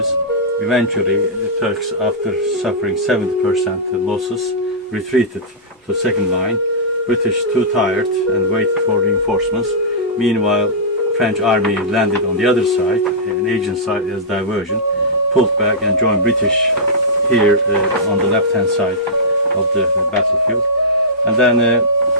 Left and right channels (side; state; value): both; normal; correlation -0.15